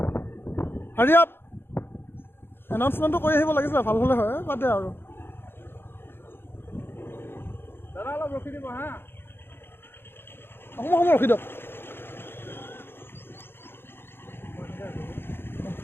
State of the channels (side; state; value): right; late; 0.11 ms